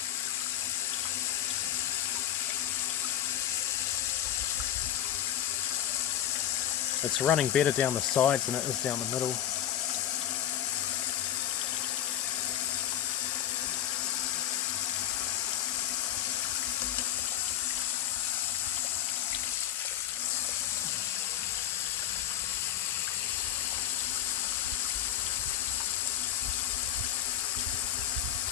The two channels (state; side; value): quieter; right; 11.3 dB